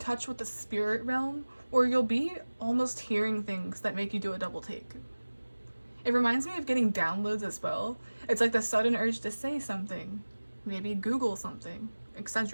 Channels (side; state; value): both; inverted; correlation -1.00